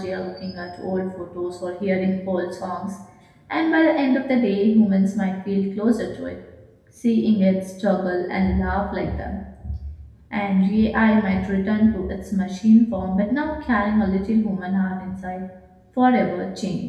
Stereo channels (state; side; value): identical; both; correlation 1.00